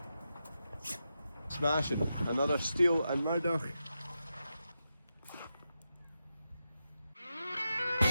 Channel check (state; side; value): inverted; both; correlation -0.88